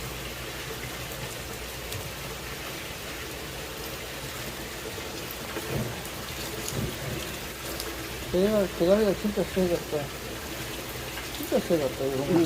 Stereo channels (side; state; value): both; identical; correlation 1.00